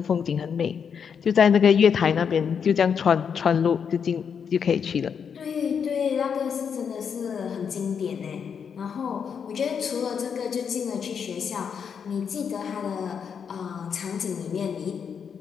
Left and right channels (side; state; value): right; quieter; 7.0 dB